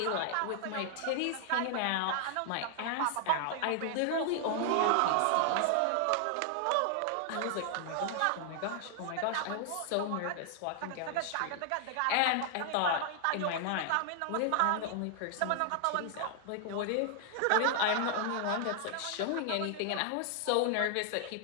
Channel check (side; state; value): both; different; correlation 0.00